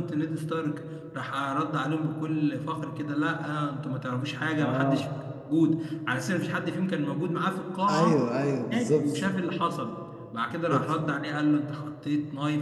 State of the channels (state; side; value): identical; both; correlation 1.00